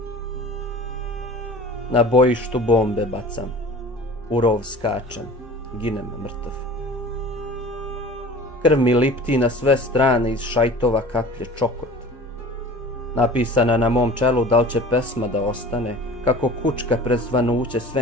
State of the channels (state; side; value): normal; both; correlation 0.41